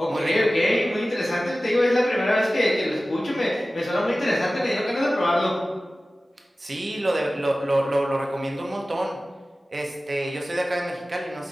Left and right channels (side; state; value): both; normal; correlation 0.96